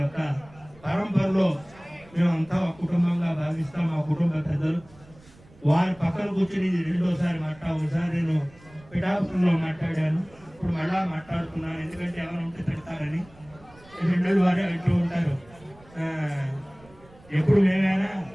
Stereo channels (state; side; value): noise; right; rumble, 25 dB below the sound